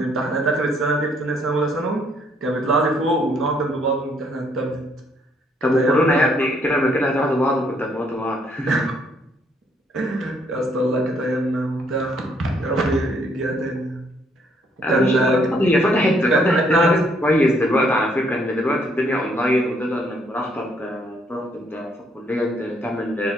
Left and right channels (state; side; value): normal; both; correlation 0.68